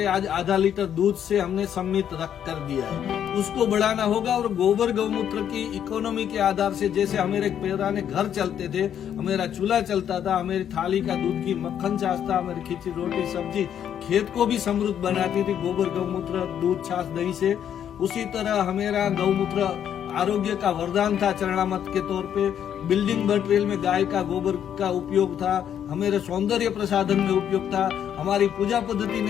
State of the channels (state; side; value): quieter; right; 9.4 dB